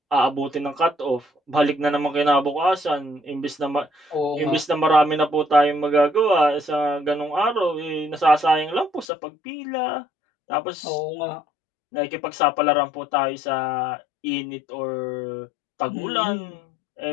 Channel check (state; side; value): drops out; right; at 9.1 s